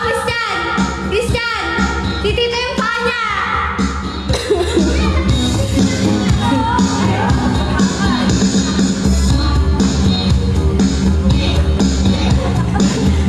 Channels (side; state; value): both; identical; correlation 1.00